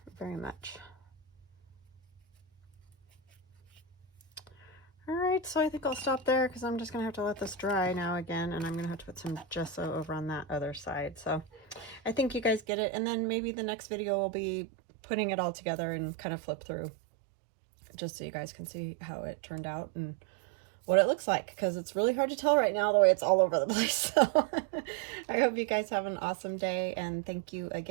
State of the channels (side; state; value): left; drops out; at 12.6 s